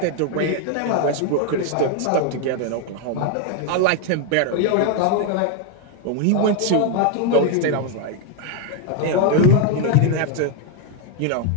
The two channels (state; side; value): different; both; correlation 0.01